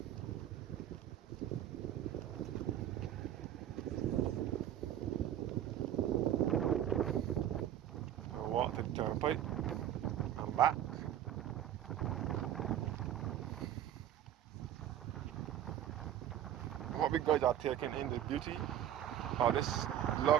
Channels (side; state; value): left; quieter; 11.2 dB